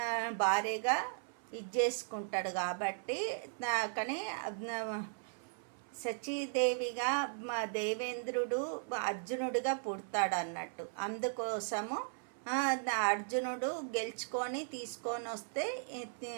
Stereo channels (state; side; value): silent; left; 53 dB below the other